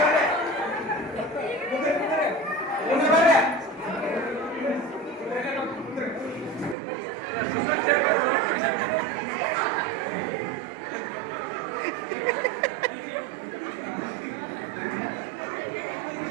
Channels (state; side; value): drops out; left; at 6.8 s